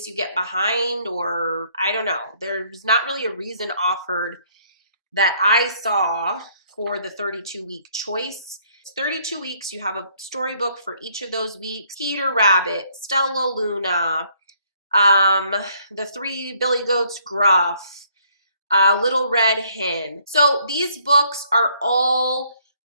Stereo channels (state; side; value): inverted; both; correlation -0.65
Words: you get behind, or I don't know. There's not really a reason offered that I saw for the 32-week choice. It's 32 weeks. You have a storybook for each of those weeks. Peter Rabbit, Stella Luna, the Three Billy Goats Gruff, Little Red Hen. So these books are all